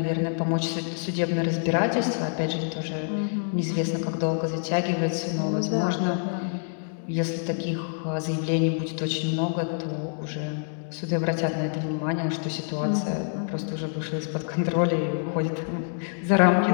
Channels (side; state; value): right; silent; digital silence